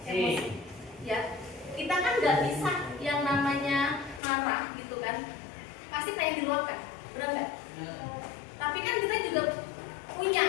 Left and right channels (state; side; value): drops out; right; at 4.2 s